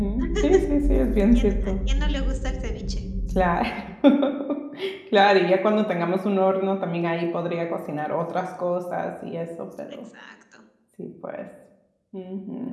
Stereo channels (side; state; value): both; identical; correlation 1.00